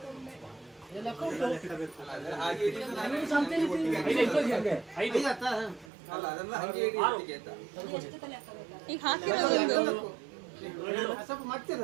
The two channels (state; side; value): drops out; left; at 5.9 s